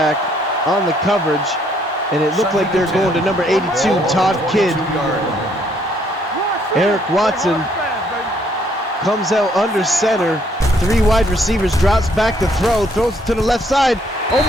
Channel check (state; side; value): normal; both; correlation 0.67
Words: on the coverage. And it looked like they're going to number 82, Todd Kidd. Eric Watson comes out under center. 3 wide receivers, drops back to throw, throws it to the left side.